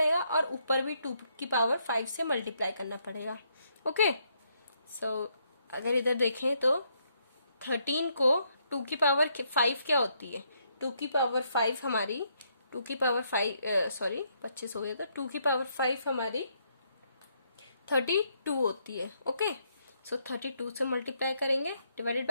और ऊपर भी 2 की पावर 5 से मल्टीप्लाई करना पड़ेगा। ओके, सो अगर इधर देखें तो 13 को 2 की पावर 5 क्या होती है? 2 की पावर 5 हमारी 2 की पावर 5 25 हो गया, तो 2 की पावर 5 हमारी 32 होती है। ओके, सो 32 से मल्टीप्लाई करेंगे डिवाइडेड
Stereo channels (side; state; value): both; inverted; correlation -0.74